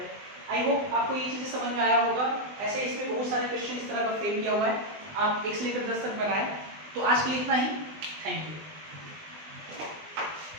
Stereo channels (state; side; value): late; left; 20 ms